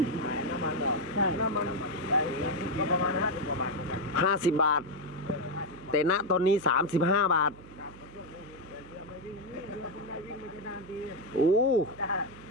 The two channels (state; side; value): noise; right; hum, 19 dB below the sound